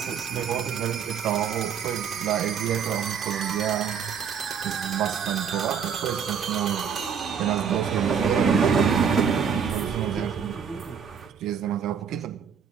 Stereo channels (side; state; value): left; quieter; 7.1 dB